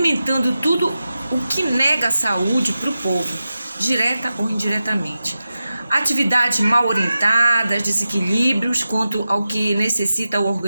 tudo o que nega a saúde para o povo, direta ou indiretamente. Atividades mal orientadas, desequilíbrios quanto ao que necessita o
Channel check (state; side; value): inverted; both; correlation -0.93